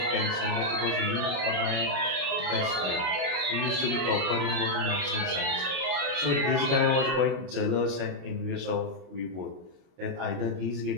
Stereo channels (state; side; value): late; left; 32 ms